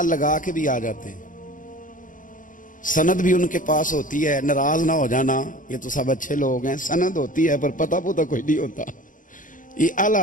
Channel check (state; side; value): late; right; 0.38 ms